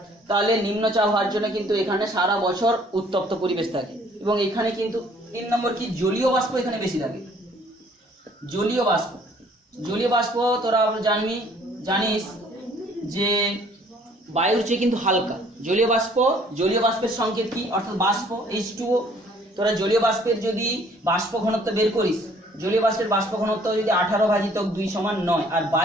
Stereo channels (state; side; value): normal; both; correlation 0.58